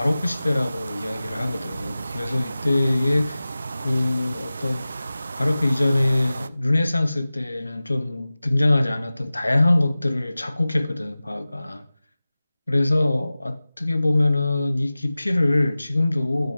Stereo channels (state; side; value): inverted; both; correlation -0.97